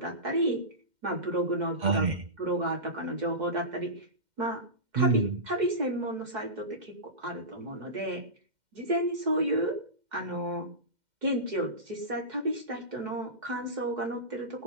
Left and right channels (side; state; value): left; late; 2.1 ms